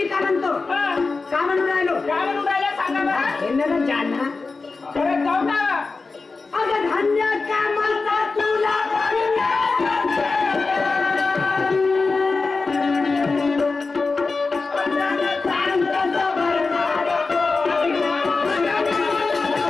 का म्हणतो का म्हणून राहिलो काय म्हणून राहिला सांगा बरं. हे ना जाना परत जाऊ का. अगं धान्य कामाचा तुला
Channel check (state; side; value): quieter; right; 4.1 dB